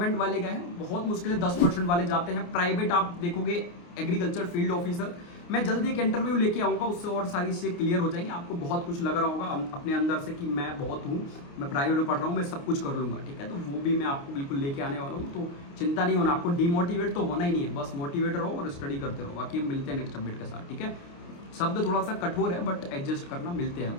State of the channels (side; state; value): right; late; 29 ms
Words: वाले गए हैं, बहुत मुश्किल है 10% वाले जाते हैं। प्राइवेट आप देखोगे एग्रीकल्चर फील्ड ऑफिसर, मैं जल्दी एक इंटरव्यू लेके आऊँगा, उससे और सारी चीज़ें क्लियर हो जाएंगी। आपको बहुत कुछ लग रहा होगा अपने अंदर से कि मैं बहुत हूँ, मैं प्राइवेट में पढ़ रहा हूँ, मैं सब कुछ कर लूँगा, ठीक है। तो वो भी मैं आपको बिल्कुल लेके आने वाला हूँ, तो चिंता नहीं होना, आपको डिमोटिवेट तो होना ही नहीं है, बस मोटिवेट रहो और स्टडी करते रहो। बाकी हम मिलते हैं नेक्स्ट अपडेट के साथ, ठीक है। शब्द थोड़ा सा कठोर है बट एडजस्ट करना, मिलते हैं हम,